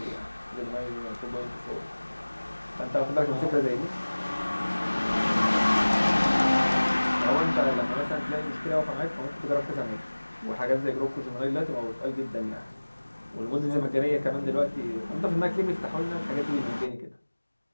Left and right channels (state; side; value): inverted; both; correlation -1.00